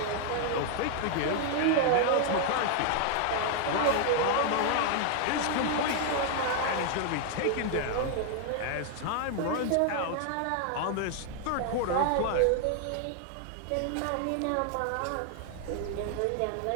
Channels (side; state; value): both; different; correlation 0.00